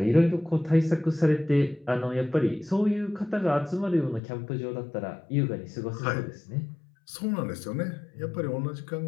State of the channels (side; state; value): right; drops out; at 4.2 s